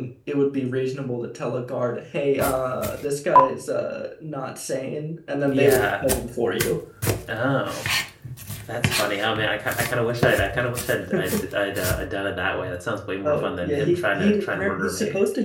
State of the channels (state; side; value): identical; both; correlation 1.00